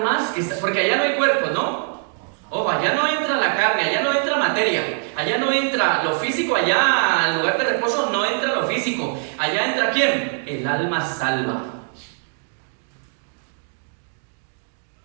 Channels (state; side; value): silent; left; 55 dB below the other